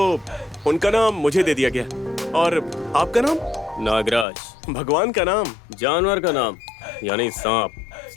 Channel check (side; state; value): right; drops out; at 4.2 s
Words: उनका नाम मुझे दे दिया गया। और आपका नाम? नागराज। भगवान का नाम? जानवर का नाम, यानी सांप।